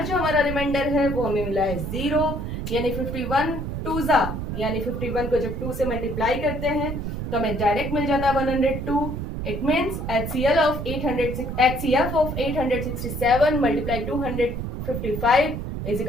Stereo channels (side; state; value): right; noise; rumble, 5 dB below the sound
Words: जो हमारा रिमाइंडर है वो हमें मिला है 0। यानी 51 टू जा, यानी 51 को जब 2 से मल्टीप्लाई करते हैं तो हमें डायरेक्ट मिल जाता है 102। It means HCF of 867 multiply 255 is